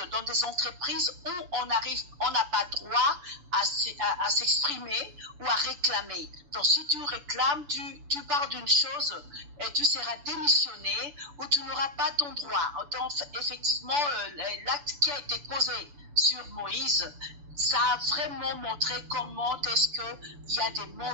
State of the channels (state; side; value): late; left; 6.9 ms